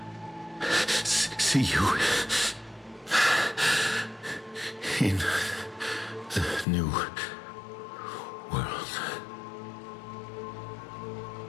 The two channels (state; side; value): drops out; right; at 6.7 s